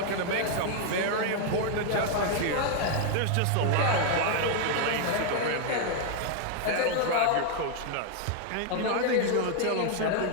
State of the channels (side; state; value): both; different; correlation 0.00